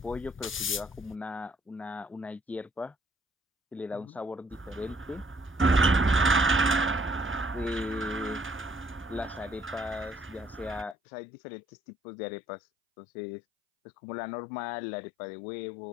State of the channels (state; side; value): drops out; right; at 11.0 s